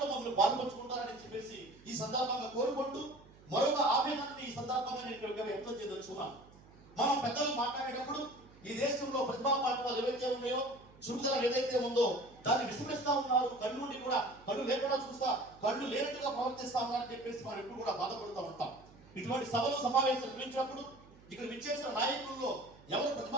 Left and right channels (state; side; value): noise; right; hum, 23 dB below the sound